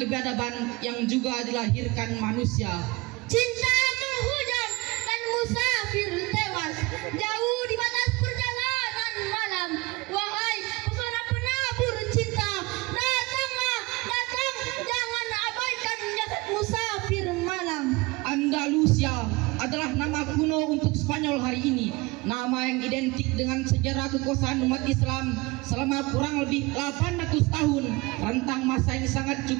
yang juga dilahirkan manusia. Cinta menghujam dan musafir tewas jauh di batas perjalanan malam. Wahai pesona penabur cinta, datanglah, datang, jangan abaikan jasad musafir malam. Andalusia adalah nama kuno untuk Spanyol hari ini, nama yang identik dengan sejarah kekuasaan umat Islam selama kurang lebih 800 tahun, rentang masa yang sangat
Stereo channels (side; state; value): left; quieter; 23.4 dB